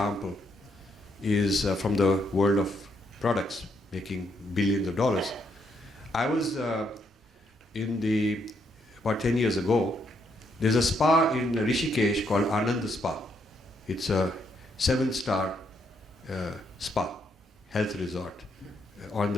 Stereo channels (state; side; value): normal; both; correlation 0.75